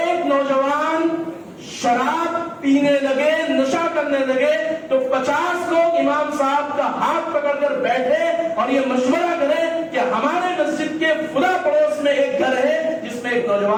نوجوان شراب پینے لگے, نشہ کرنے لگے, تو 50 لوگ امام صاحب کا ہاتھ پکڑ کر بیٹھے اور یہ مشورہ کریں کہ ہمارے مسجد کے فلاں پڑوس میں ایک گھر ہے جس میں ایک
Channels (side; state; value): both; identical; correlation 1.00